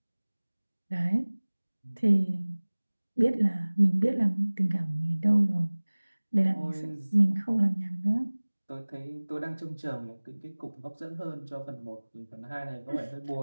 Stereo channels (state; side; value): inverted; both; correlation -1.00